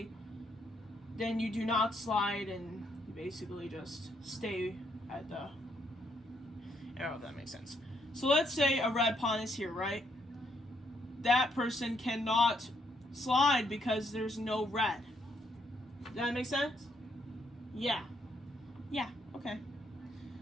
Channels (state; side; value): normal; both; correlation 0.73